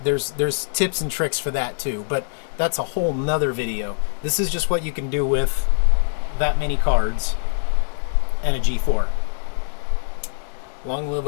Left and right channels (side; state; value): right; silent; digital silence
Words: there's tips and tricks for that too, but that's a whole nother video. This is just what you can do with that many cards and a G4. Long live